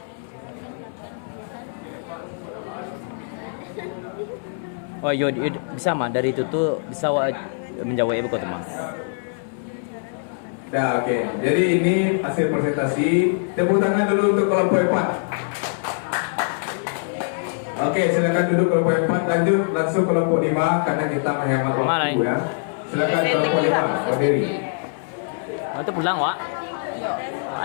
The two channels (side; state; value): right; silent; 60 dB below the other